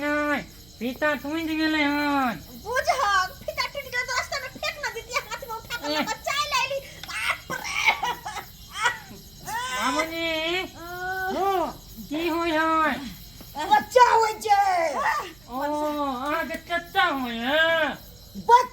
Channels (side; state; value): right; noise; hum, 25 dB below the sound